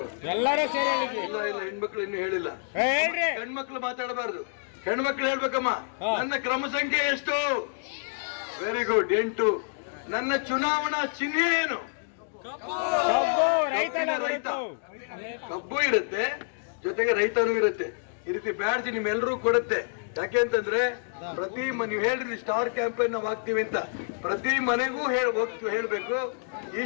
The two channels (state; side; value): silent; right; digital silence